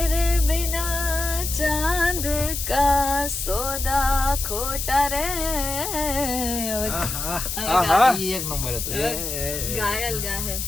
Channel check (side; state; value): left; noise; hiss, 4 dB below the sound